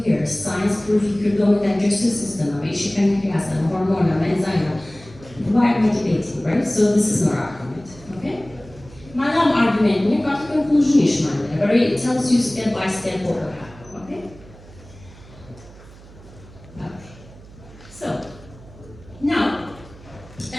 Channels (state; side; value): noise; right; hum, 20 dB below the sound